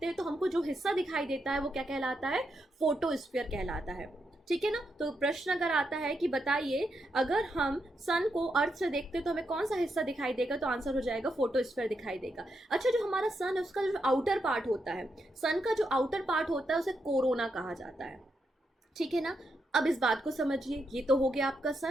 हैं तो हमको जो हिस्सा दिखाई देता है वो क्या कहलाता है? फोटोस्फीयर कहलाता है। ठीक है ना। तो प्रश्न अगर आता है कि बताइए, अगर हम सन को अर्थ से देखते हैं तो हमें कौन सा हिस्सा दिखाई देगा, तो आंसर हो जाएगा फोटोस्फीयर दिखाई देगा। अच्छा, जो हमारा सन है उसका जो आउटर पार्ट होता है, सन का जो आउटर पार्ट होता है उसे कोरोना कहा जाता है। ठीक है ना। अब इस बात को समझिए, ये तो हो गया आपका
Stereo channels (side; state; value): both; normal; correlation 0.82